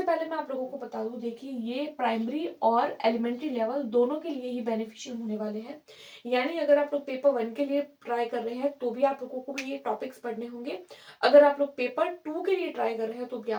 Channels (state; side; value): identical; both; correlation 1.00